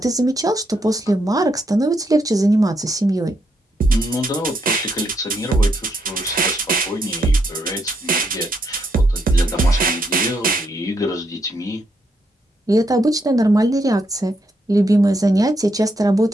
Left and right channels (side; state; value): both; normal; correlation 0.77